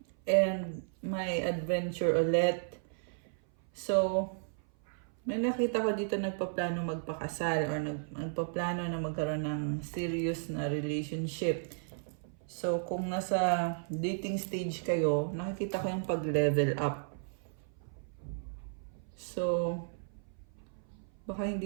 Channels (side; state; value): left; silent; 55 dB below the other